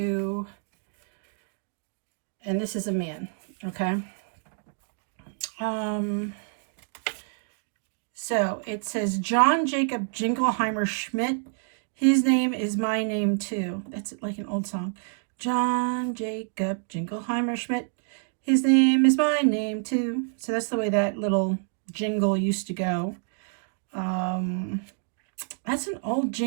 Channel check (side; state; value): left; silent; 60 dB below the other